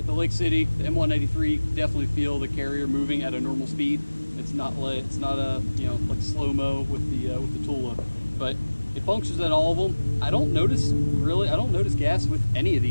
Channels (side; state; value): both; inverted; correlation -1.00